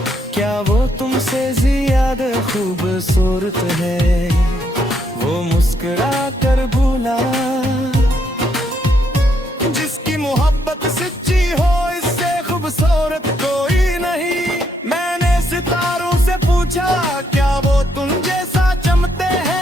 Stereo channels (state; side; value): normal; both; correlation 0.74